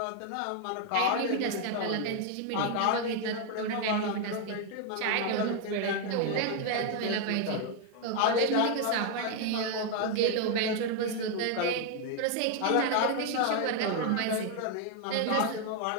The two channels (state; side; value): different; both; correlation 0.01